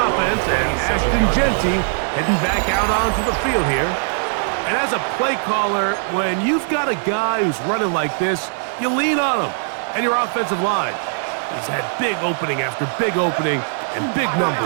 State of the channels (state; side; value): silent; left; 66 dB below the other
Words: and Ashton Genty heading back out onto the field here. And as a play caller, when you've got a guy who's running like this, you lean on him and your offensive line. He's had big opening after big opening and big